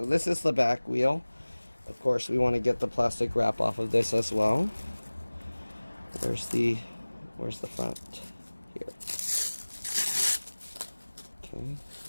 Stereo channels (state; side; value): inverted; both; correlation -1.00